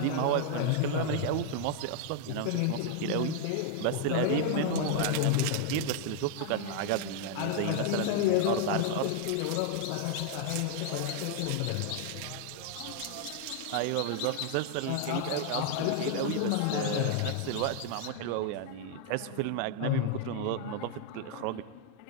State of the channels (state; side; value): different; both; correlation 0.00